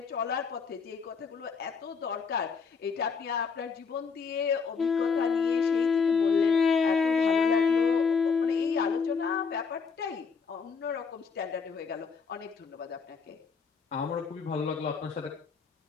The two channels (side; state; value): right; quieter; 5.5 dB